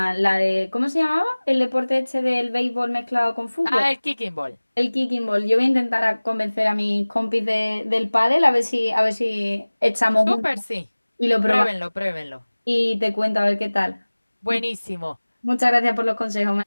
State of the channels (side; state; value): both; inverted; correlation -1.00